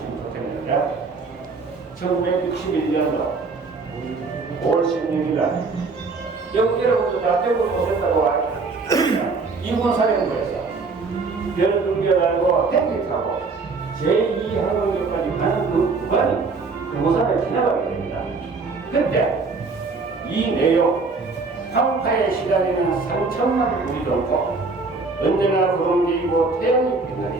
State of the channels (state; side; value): quieter; left; 4.1 dB